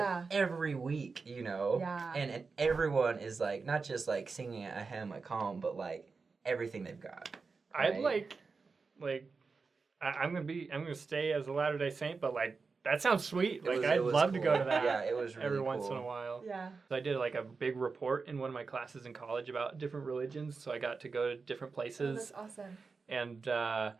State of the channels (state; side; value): quieter; left; 4.6 dB